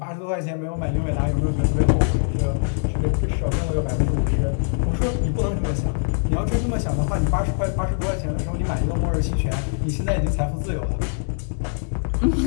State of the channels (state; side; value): silent; right; digital silence